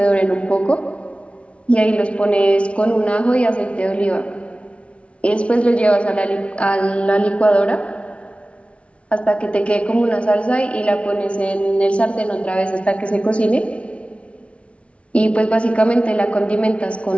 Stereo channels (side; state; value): right; late; 0.061 ms